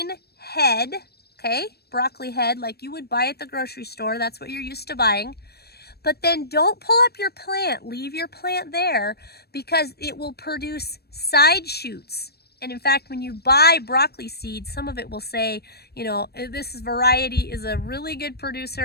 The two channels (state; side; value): late; right; 0.47 ms